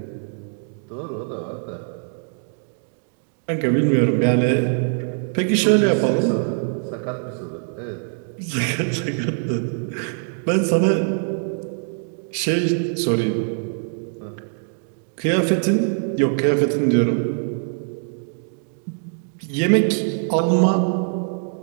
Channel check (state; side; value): silent; left; digital silence